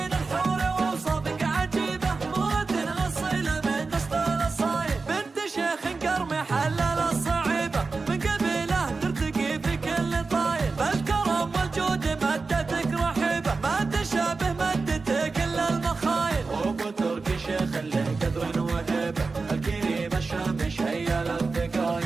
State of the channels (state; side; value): quieter; left; 4.1 dB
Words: الحور وأوصافك عجيبة، مرة أصيلة من نسل الأصايل، بنت شيخ قرمي حلل الصعيبة، من قبيله ترتقي في كل طايل، فالكرم والجود مدتك رحيبة، ما تشابه مدتك إلا المخايل، وابو تركي شيخ له قدر وهيبة، الكريم الشام شيل